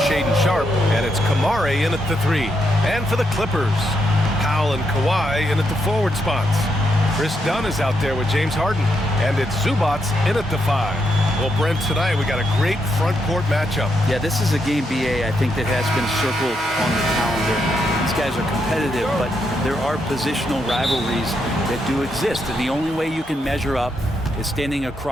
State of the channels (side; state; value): both; normal; correlation 0.80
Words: Shaedon Sharpe, and it's Kamari in at the 3. And for the Clippers, Powell and Kawhi in at the forward spots. Chris Dunn is out there with James Harden, and it's Zubac in at the 5. Well, Brent, tonight we got a great front court matchup. Yeah, this is a game, BA, I think that has been circled on the calendar. These guys are competitive, but there are positional rivalries that do exist, and the only way you can measure up is standing